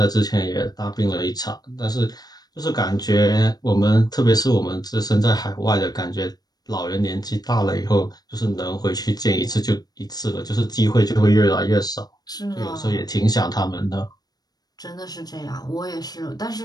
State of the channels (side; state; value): right; late; 0.19 ms